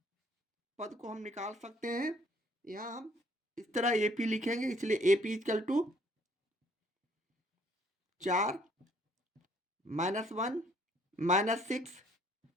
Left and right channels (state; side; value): normal; both; correlation 0.63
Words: पद को हम निकाल सकते हैं। यहाँ हम इस तरह एपी लिखेंगे, इसलिए AP equal to 4 -1 -6